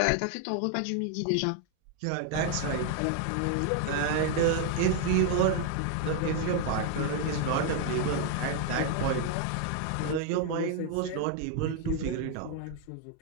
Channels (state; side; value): different; both; correlation 0.00